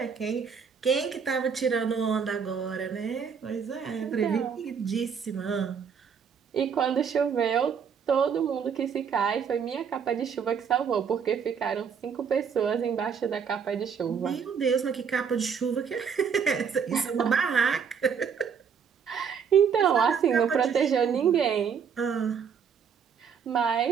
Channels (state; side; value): quieter; left; 6.8 dB